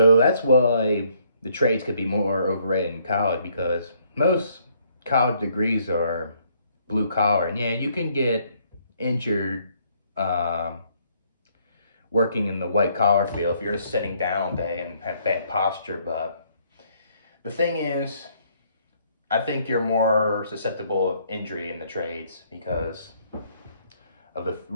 that's why the trades could be more overrated in college, because most college degrees are blue collar, and yeah, you can get injured working in the white collar field if you're just sitting down all day and have bad posture. But the thing is, I think you're more susceptible of injury in the trades because of the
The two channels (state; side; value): inverted; both; correlation -0.67